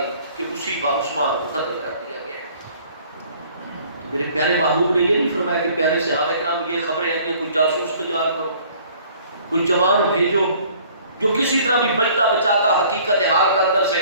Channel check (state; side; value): inverted; both; correlation -0.55